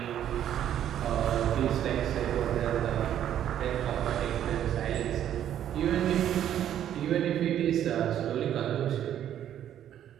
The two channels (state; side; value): quieter; left; 10.7 dB